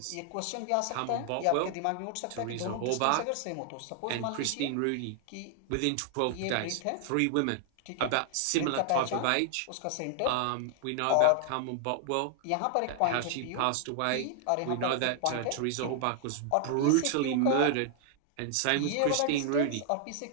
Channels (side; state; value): both; different; correlation 0.00